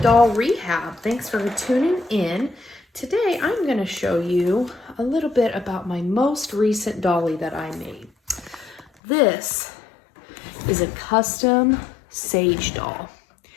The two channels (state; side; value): drops out; right; at 8.9 s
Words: Rehab. Thanks for tuning in. Today, I'm going to show you a little bit about my most recent dolly that I made. This is a custom Saige doll.